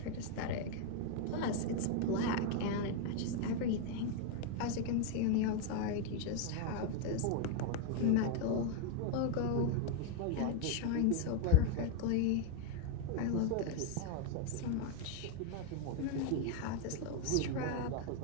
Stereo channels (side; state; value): both; different; correlation 0.01